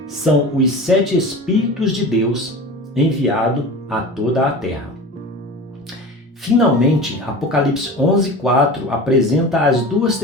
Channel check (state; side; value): normal; both; correlation 0.34